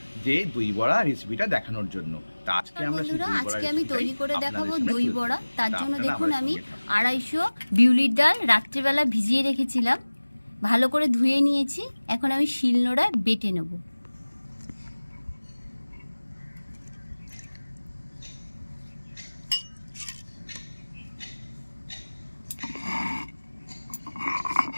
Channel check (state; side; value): inverted; both; correlation -1.00